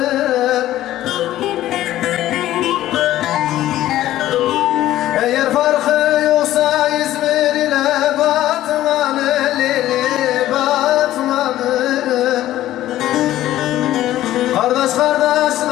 Eğer farkı yoksa İzmir ile Batman'ın lili Batman'ın. Kardeş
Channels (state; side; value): quieter; right; 14.0 dB